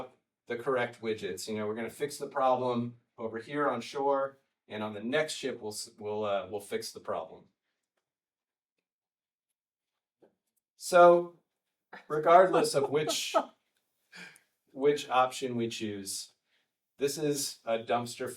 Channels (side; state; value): both; identical; correlation 1.00